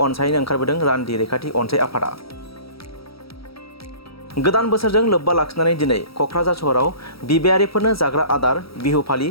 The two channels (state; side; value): late; right; 0.76 ms